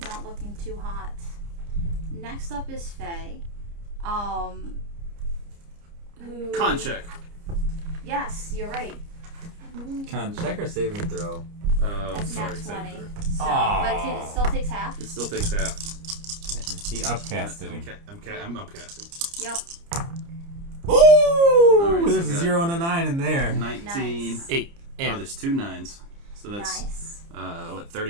not looking too hot. Next up is Faye. Who? Con check. Yes, you're right. Con check or saving throw? That's Sorry, nat 20. saving throw. So, Aw. but it still takes half. It still takes half. He upcasted him. I'm upcasting. Yep. Ooh! Alright, so There's you a got 0 and a 9 in there. 19. Nice. 8. Oh, And there's 2 9s. So that's Nice. what,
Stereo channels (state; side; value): late; left; 29 ms